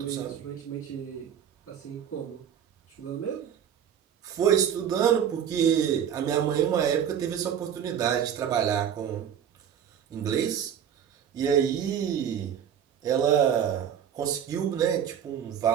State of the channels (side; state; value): left; quieter; 8.9 dB